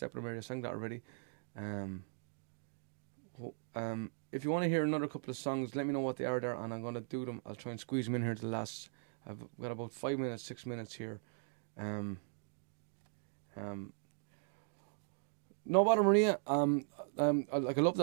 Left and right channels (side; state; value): left; silent; digital silence